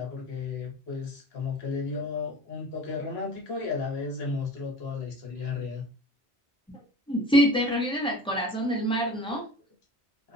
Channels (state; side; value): normal; both; correlation 0.39